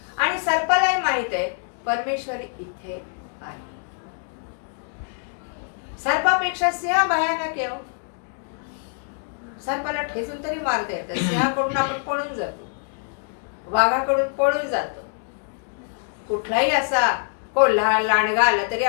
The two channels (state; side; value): silent; right; digital silence